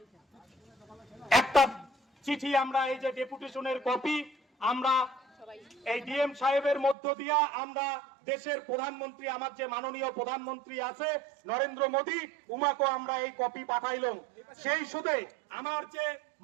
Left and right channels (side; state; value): left; drops out; at 7.0 s